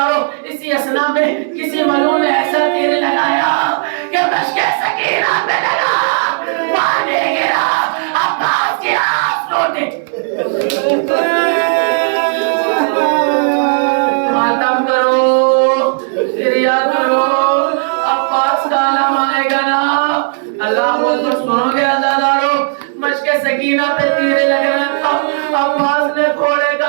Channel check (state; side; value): silent; left; digital silence